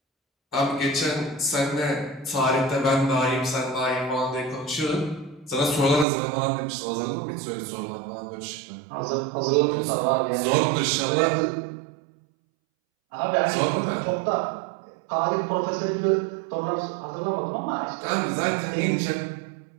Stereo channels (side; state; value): left; drops out; at 6.1 s